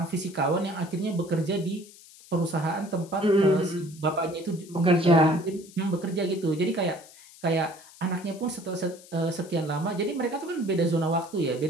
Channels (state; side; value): noise; left; hiss, 21 dB below the sound